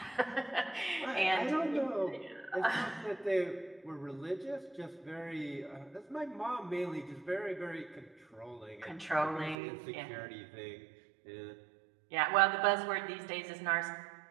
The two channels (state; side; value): drops out; left; at 9.6 s